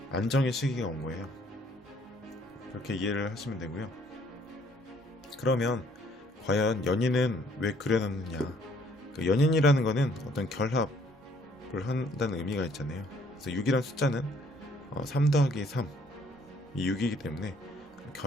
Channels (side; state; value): both; normal; correlation 0.62